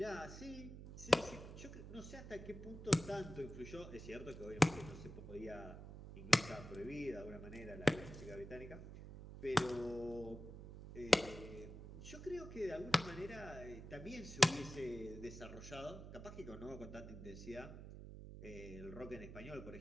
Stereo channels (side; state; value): right; noise; hum, 11 dB below the sound